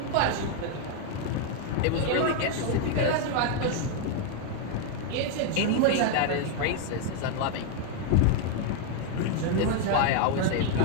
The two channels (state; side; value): different; both; correlation 0.00